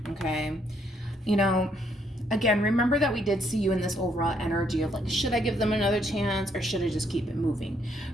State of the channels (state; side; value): normal; both; correlation 0.71